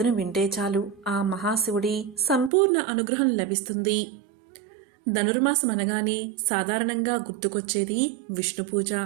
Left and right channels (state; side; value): drops out; left; at 2.5 s